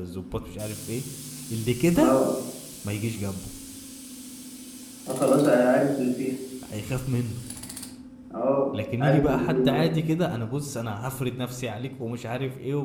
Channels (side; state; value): both; identical; correlation 1.00